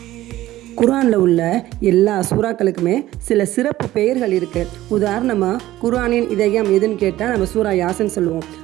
குர்ஆனில் உள்ள எல்லா சூறாக்களுக்குமே சில சிறப்பு பெயர்கள் இருக்குது. உதாரணமாக குர்ஆனின் இதயம் எதுன்னு கேட்டால் நம்ம சூரா யாசின் சொல்லுவோம்.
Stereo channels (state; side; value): quieter; left; 15.3 dB